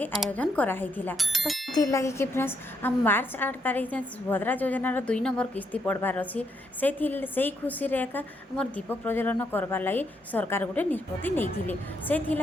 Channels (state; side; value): normal; both; correlation 0.76